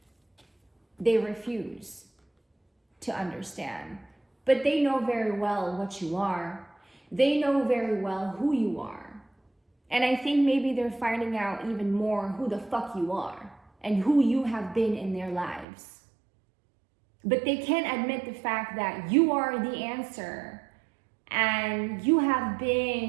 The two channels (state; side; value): drops out; left; at 15.7 s